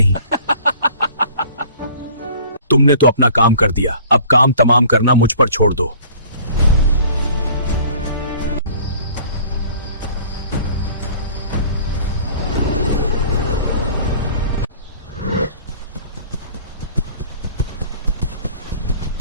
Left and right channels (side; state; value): both; inverted; correlation -0.49